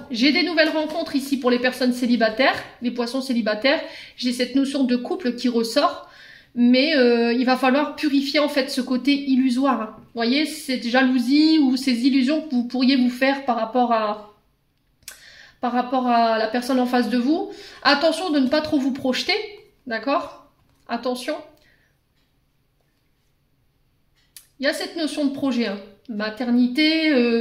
J'ai des nouvelles rencontres ici pour les personnes célibataires, les poissons célibataires. J'ai cette notion de couple qui ressort. Mais il va falloir purifier en fait ce côté illusoire. Hein. Vous voyez, cette jalousie ou ces illusions que vous pourriez vous faire par rapport à la personne en face de vous. Attention de ne pas trop vous projeter, d'accord? Attention. Il y a cette notion de projet, hein. Maternité,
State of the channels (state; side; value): identical; both; correlation 1.00